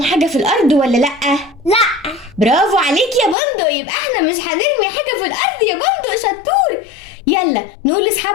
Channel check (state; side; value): drops out; right; at 3.4 s